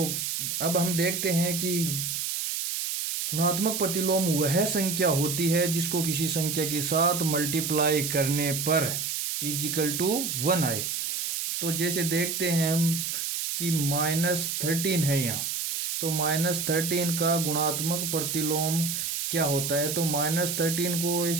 अब हम देखते हैं कि गुणात्मक प्रतिलोम वह संख्या होती है जिसको किसी संख्या के साथ मल्टीप्लाई करने पर इजिकल टू 1 आए। तो जैसे देखते हैं हम कि -13 है यहाँ, तो -13 का गुणात्मक प्रतिलोम क्या होता है। तो -13 को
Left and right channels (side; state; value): right; noise; hiss, 2 dB below the sound